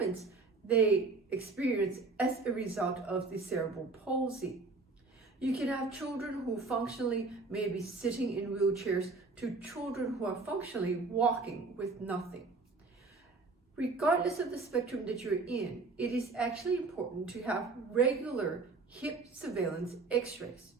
they experience as a result of the cerebral palsy. You can have children who functionally may be sitting in wheelchairs to children who are functionally walking with nothing. Regardless of the spectrum that you're in, it is actually important to have regular hip surveillance x-rays.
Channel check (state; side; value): quieter; left; 3.8 dB